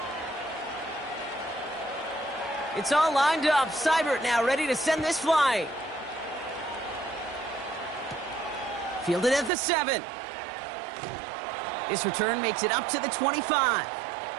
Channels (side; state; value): left; drops out; at 9.5 s